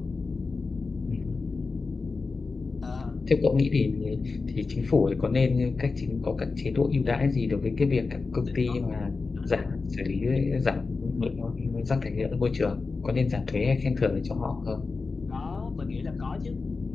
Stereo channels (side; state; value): right; quieter; 4.2 dB